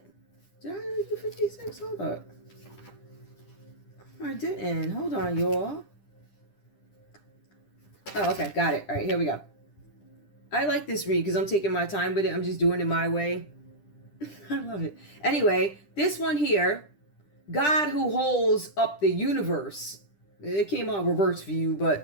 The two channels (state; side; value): late; right; 10 ms